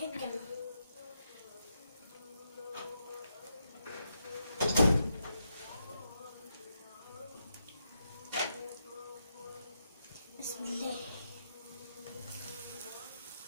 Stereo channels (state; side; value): inverted; both; correlation -0.82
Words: الجبنه. بسم الله.